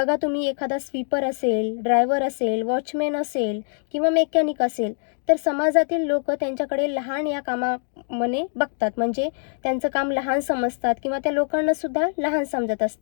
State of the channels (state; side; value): silent; right; digital silence